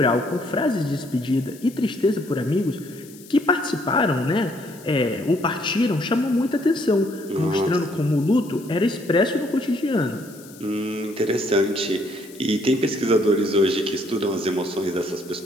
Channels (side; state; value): left; noise; hiss, 21 dB below the sound